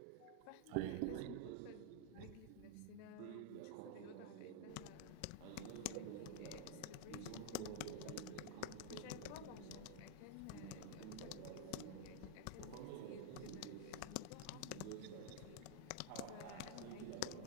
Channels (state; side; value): different; both; correlation 0.00